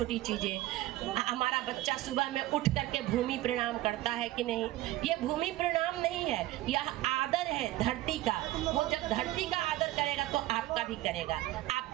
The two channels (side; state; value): left; quieter; 16.2 dB